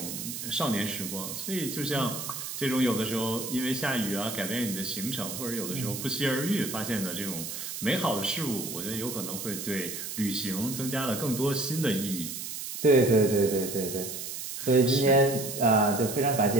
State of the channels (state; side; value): noise; right; hiss, 7 dB below the sound